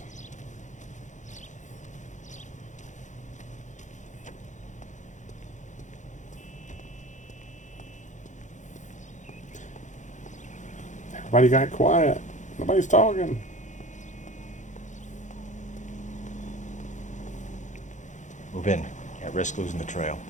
Everybody got quiet. Nobody's talking. Move in. Can't risk losing the trail.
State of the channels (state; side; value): late; right; 0.35 ms